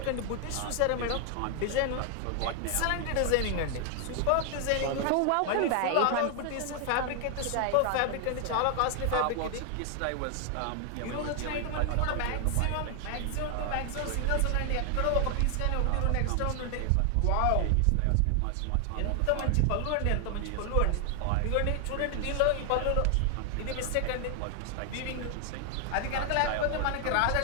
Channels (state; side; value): different; both; correlation 0.00